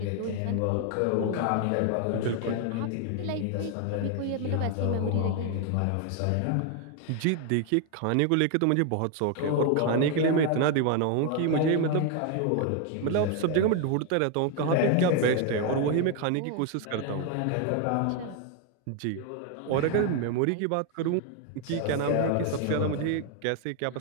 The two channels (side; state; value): both; different; correlation 0.01